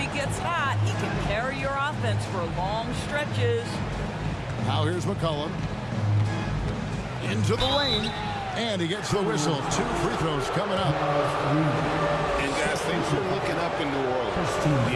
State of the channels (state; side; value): identical; both; correlation 1.00